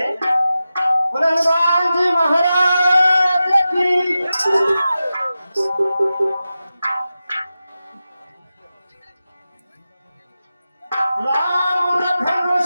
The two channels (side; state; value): both; inverted; correlation -0.93